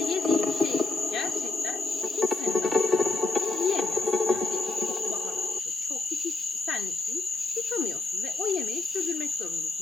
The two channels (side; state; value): right; quieter; 3.4 dB